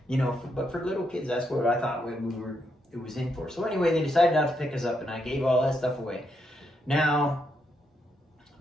You know, but for little kids, that's what I thought it was in for. So anyway, they decided not to pick us up, and I gave all that stuff away. Now,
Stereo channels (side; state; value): both; normal; correlation 0.79